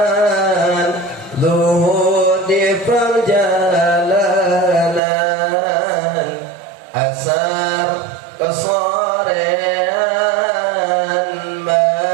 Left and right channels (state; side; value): drops out; left; at 5.0 s